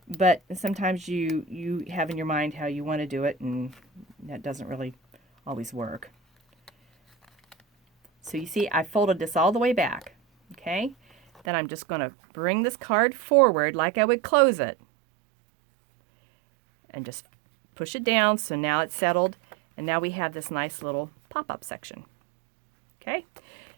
but sometimes you have in your mind how you want to do it, and that doesn't really always work. So you see, I folded this all the way back. Okay, then I'm just going to bring this card forward like I would close it and just push it down. So now it's settled, and now we have this nice little pop-up section. Okay,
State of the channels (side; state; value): left; drops out; at 11.4 s